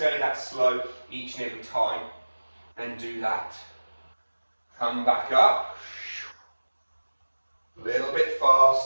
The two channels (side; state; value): both; inverted; correlation -1.00